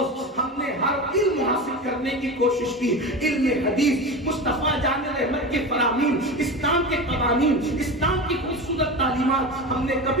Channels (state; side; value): normal; both; correlation 0.26